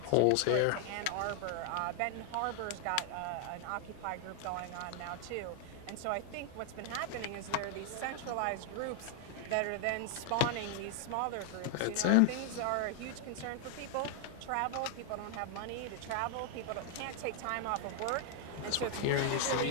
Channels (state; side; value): different; both; correlation 0.00